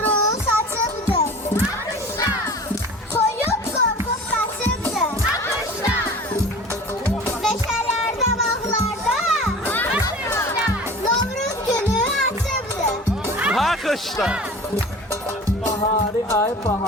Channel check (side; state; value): both; normal; correlation 0.40